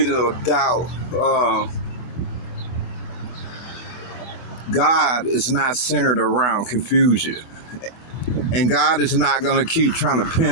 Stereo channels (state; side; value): late; right; 24 ms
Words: of doubt, God is not centered around confusion. And God is not going to keep trying to